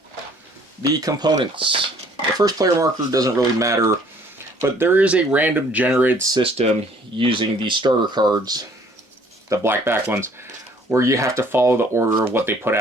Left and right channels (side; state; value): both; normal; correlation 0.58